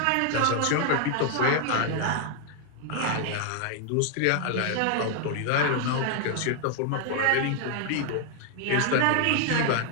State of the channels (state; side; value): different; both; correlation 0.00